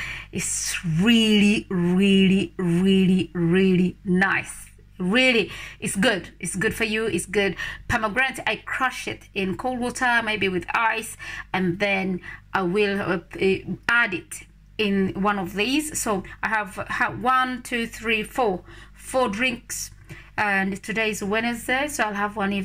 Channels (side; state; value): both; identical; correlation 1.00